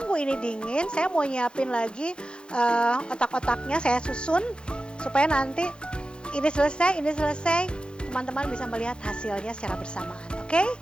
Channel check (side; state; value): right; late; 0.052 ms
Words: ini dingin, saya mau nyiapin lagi otak-otaknya, saya susun supaya nanti ini selesai, teman-teman bisa melihat hasilnya secara bersamaan. Oke?